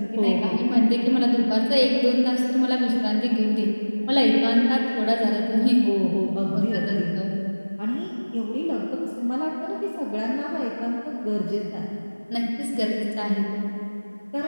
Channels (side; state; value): both; inverted; correlation -1.00